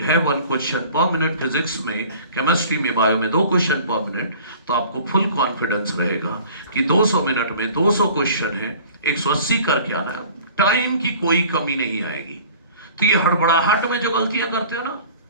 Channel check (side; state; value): both; inverted; correlation -0.47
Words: है 1 क्वेश्चन पर मिनट फिजिक्स में, केमिस्ट्री में, बायो में 2 क्वेश्चन पर मिनट, तो आपको फुल कॉन्फिडेंस रहेगा कि 200 मिनट में 200 क्वेश्चन है, 180 करके आना है, टाइम की कोई कमी नहीं आएगी। तो ये हड़बड़ाहट में जो गलतियां करते हो ना,